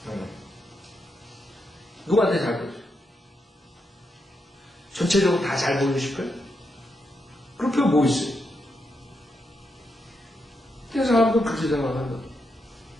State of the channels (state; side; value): normal; both; correlation 0.83